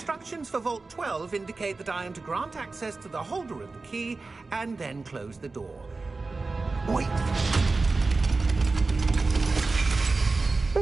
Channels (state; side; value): quieter; left; 3.7 dB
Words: for Vault 12 indicate that I am to grant access to the holder of the key and then close the door. Wait!